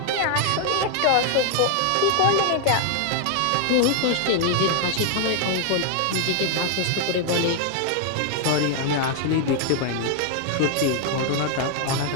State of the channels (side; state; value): both; different; correlation 0.00